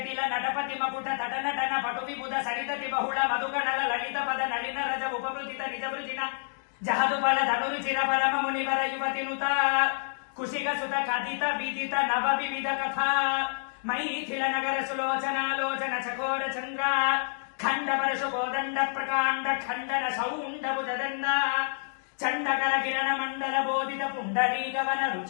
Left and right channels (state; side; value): silent; right; digital silence